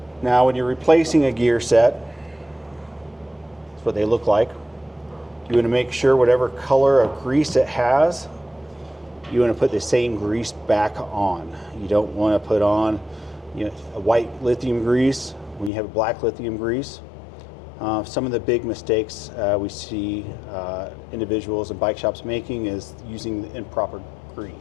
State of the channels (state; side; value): drops out; right; at 15.7 s